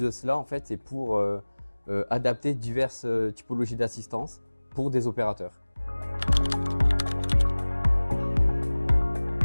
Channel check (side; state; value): both; inverted; correlation -1.00